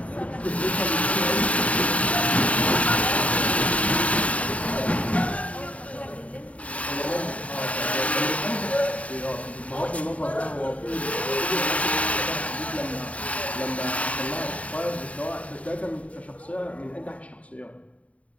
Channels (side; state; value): right; late; 0.067 ms